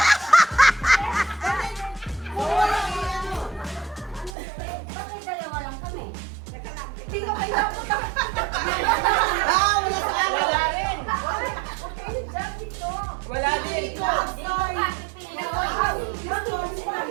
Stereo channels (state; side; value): drops out; left; at 4.3 s